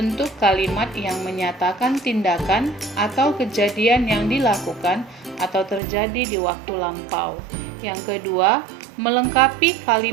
kalimat yang menyatakan tindakan atau kejadian yang dilakukan atau terjadi di waktu lampau. Yang kedua, melengkapi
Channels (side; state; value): left; drops out; at 5.8 s